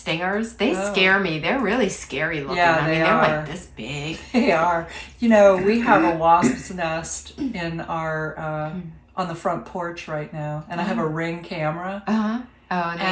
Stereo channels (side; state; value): both; identical; correlation 1.00